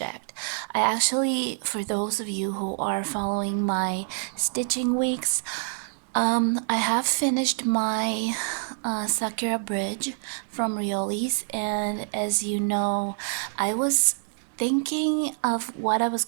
I actually, for those of you who are following my stitching weeks, I have finished my Sakura bridge from Rioli's, and as you know, I was thinking of what I was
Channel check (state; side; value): silent; left; digital silence